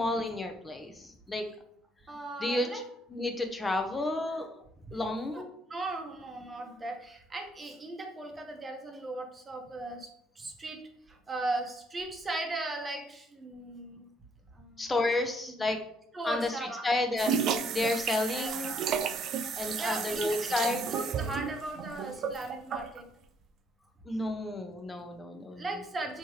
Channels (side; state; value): both; normal; correlation 0.68